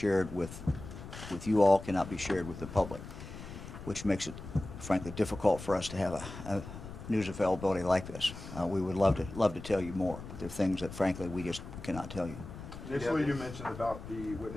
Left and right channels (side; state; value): left; noise; rumble, 12 dB below the sound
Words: with you all, cannot be shared with the public, which makes it, frankly, difficult for us to have a news availability like this. We would love to tell you more, but there are things that, frankly, we just cannot tell you. Initially, you mentioned about the